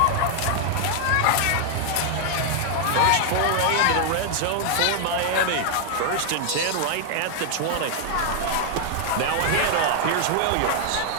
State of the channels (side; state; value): both; different; correlation 0.00